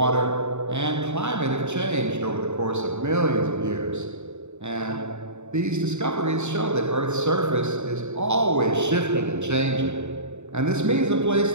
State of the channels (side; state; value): left; late; 0.82 ms